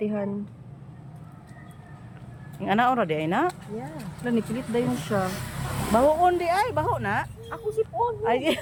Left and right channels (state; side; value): identical; both; correlation 1.00